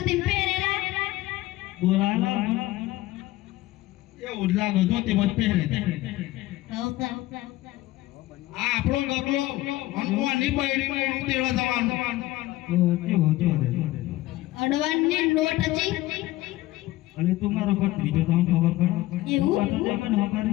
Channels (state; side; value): quieter; right; 17.1 dB